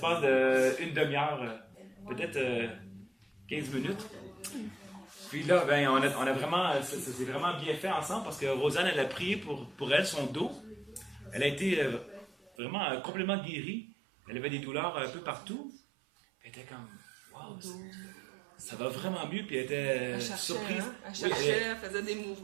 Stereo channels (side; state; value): left; drops out; at 12.5 s